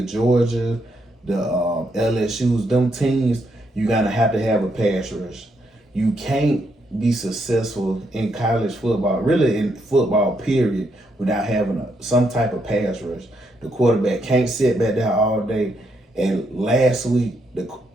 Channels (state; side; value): normal; both; correlation 0.77